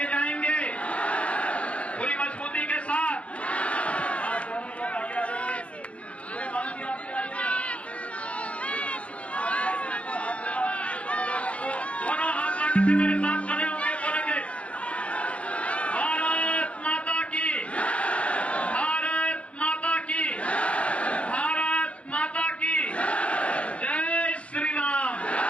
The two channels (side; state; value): right; late; 0.063 ms